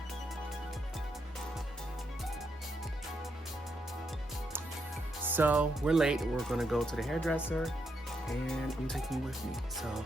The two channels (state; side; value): normal; both; correlation 0.79